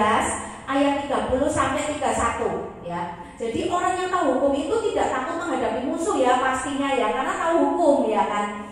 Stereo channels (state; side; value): identical; both; correlation 1.00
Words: ayat 30 sampai 31 ya. Jadi orang yang tahu hukum itu tidak takut menghadapi musuh ya, pastinya ya, karena tahu hukum ya kan.